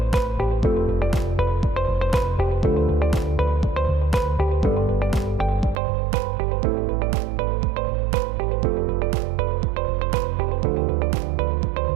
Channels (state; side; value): drops out; left; at 5.8 s